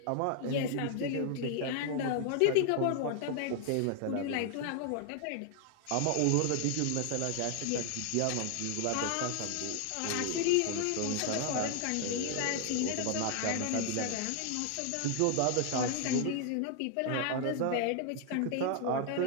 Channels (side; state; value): both; different; correlation 0.00